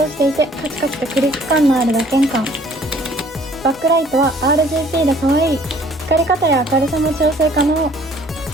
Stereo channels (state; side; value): normal; both; correlation 0.56